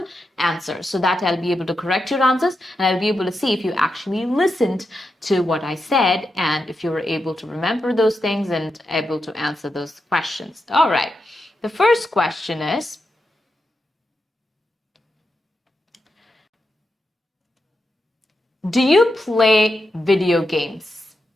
answer so that I'll be able to correct your answers and I'll be able to see if you actually listened to what I said and if you were able to remember those things and able to answer those questions. All right, the first question is, do you play video games?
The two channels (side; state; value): both; normal; correlation 0.87